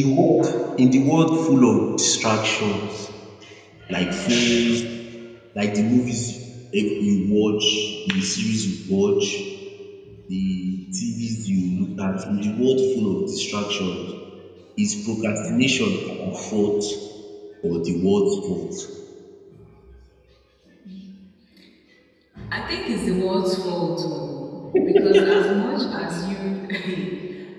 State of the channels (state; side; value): identical; both; correlation 1.00